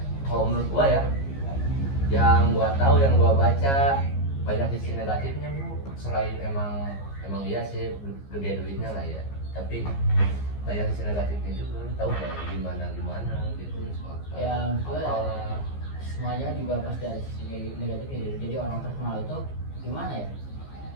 kalau menurut gua ya, yang gua tahu, yang gua baca, banyak sisi negatifnya bro. Selain emang iya sih gede duitnya lah ya, tapi banyak sisi negatifnya juga. Lu tahu gak gimana gitu soal Ya, maksudnya apalah. semuanya juga pasti ada sisi negatifnya gitu. Jadi orang terkenal itu gimana ya,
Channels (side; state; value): right; late; 15 ms